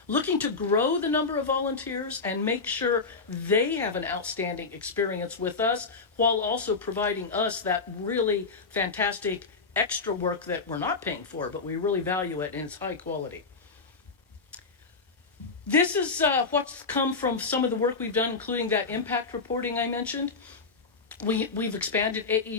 looking to grow the number of volunteers and make sure they have an outstanding experience with us while also providing us that really fantastic extra work that we're not paying for, but we really value it and it's high quality. This is what's come from some of the work we've done, including that impact reporting I mentioned. We've expanded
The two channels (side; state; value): right; quieter; 4.4 dB